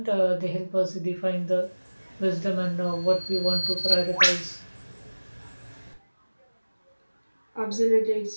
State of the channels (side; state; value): both; inverted; correlation -1.00